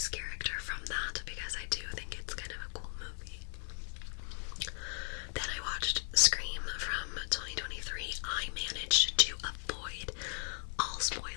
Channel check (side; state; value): right; silent; 53 dB below the other